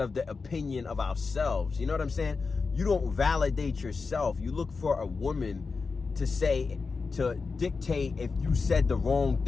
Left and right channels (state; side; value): quieter; right; 4.6 dB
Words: of the opinion of ourselves. You know what I'm saying? You don't validate yourself. You look for a woman to dictate if you said the wrong